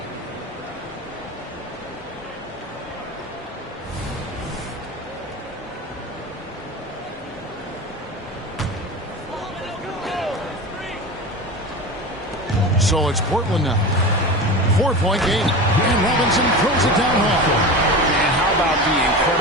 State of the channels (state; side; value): normal; both; correlation 0.29